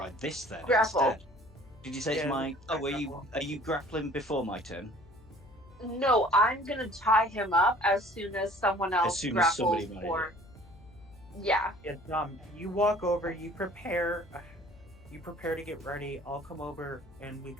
this then Grapple. instead. Did you say it's Yeah, my? Oh, grapple. are you grappling before my turn? No, I'm gonna tie him up as soon as someone else soon as grapples somebody made for. Yeah. Yeah, you walk over, you prepare to get ready. I'll come over and we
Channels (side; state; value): left; noise; hum, 24 dB below the sound